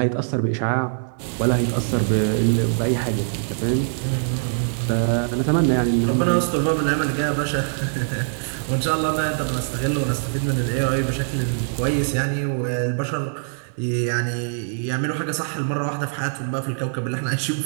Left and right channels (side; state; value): left; silent; digital silence